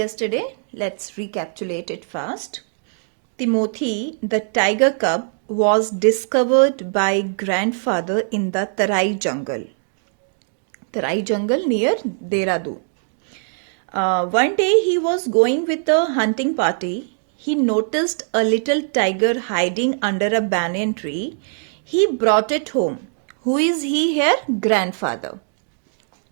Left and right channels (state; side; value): silent; left; digital silence